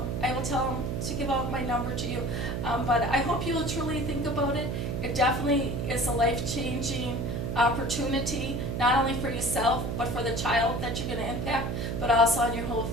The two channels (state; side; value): noise; right; hum, 2 dB below the sound